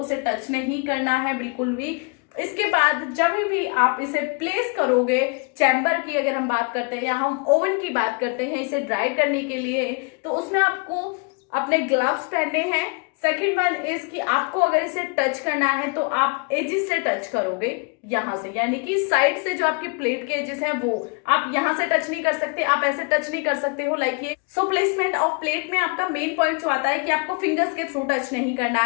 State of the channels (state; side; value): quieter; right; 33.8 dB